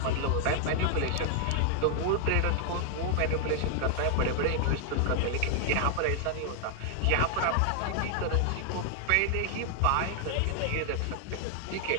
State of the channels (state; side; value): different; both; correlation 0.00